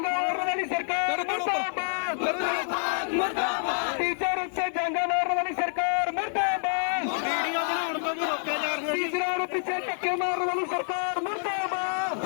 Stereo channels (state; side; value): silent; right; digital silence